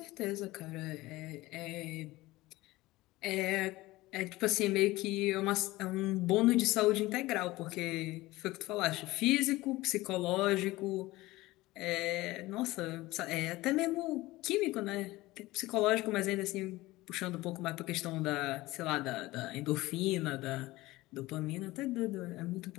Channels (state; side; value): quieter; right; 19.1 dB